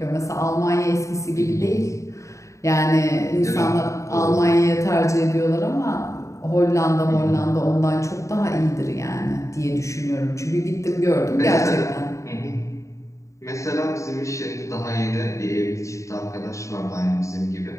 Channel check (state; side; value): late; right; 0.15 ms